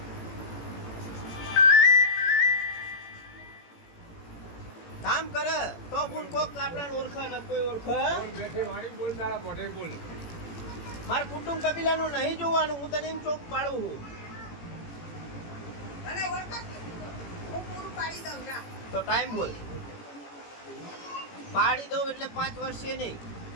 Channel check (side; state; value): right; late; 18 ms